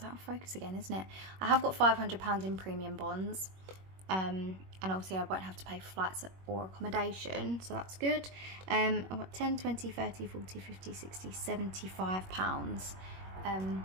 out of focus again, isn't it? I have got £500 in premium bonds, and obviously I won't have to pay for flights or accommodation, so that's good. I've got 10, 20, 30, 40, 50, 60, £75.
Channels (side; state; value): left; late; 21 ms